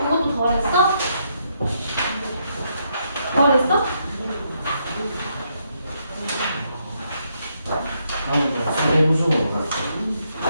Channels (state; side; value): inverted; both; correlation -0.77